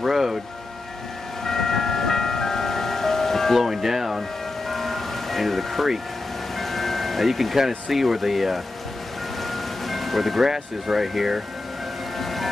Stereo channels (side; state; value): right; quieter; 3.0 dB